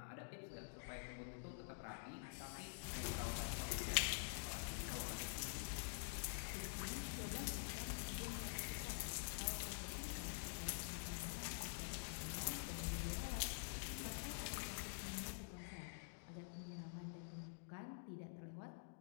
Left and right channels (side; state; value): right; silent; digital silence